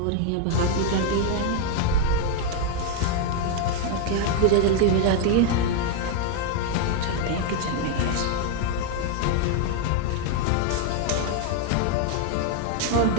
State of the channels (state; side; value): different; both; correlation 0.01